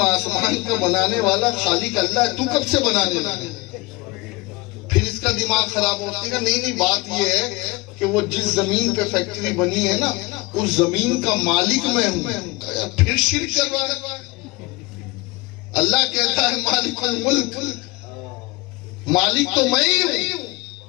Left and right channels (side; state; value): right; quieter; 23.1 dB